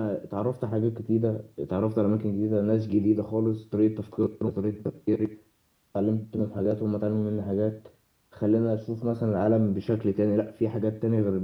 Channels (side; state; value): both; identical; correlation 1.00